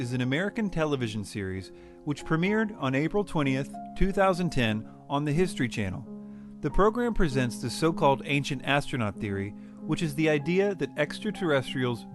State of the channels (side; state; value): both; identical; correlation 1.00